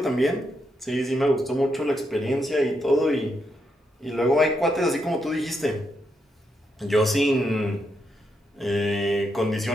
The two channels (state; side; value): normal; both; correlation 0.81